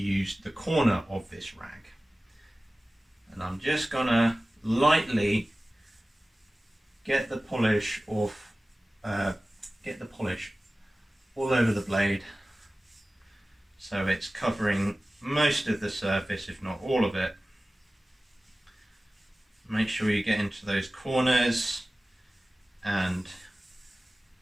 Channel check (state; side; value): normal; both; correlation 0.97